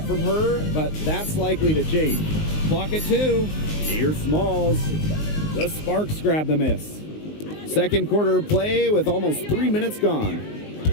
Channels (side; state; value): right; late; 19 ms